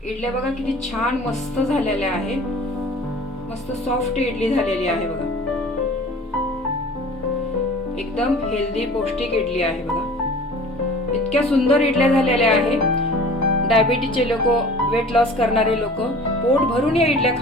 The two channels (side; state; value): both; normal; correlation 0.44